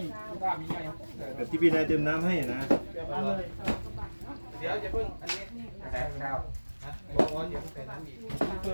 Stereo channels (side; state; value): both; inverted; correlation -1.00